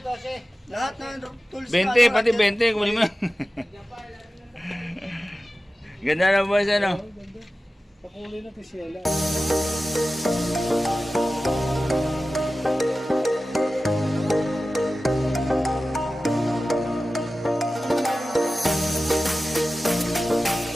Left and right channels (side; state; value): both; normal; correlation 0.95